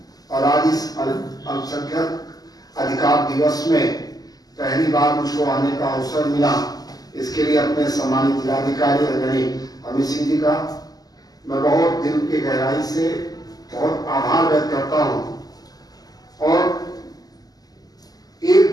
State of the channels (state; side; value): late; right; 0.18 ms